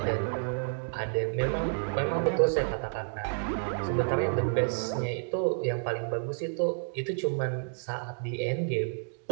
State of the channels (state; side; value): silent; left; digital silence